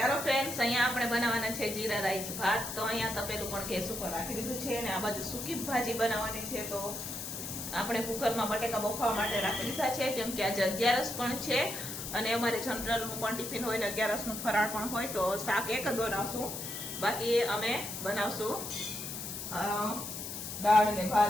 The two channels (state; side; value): noise; left; hiss, 7 dB below the sound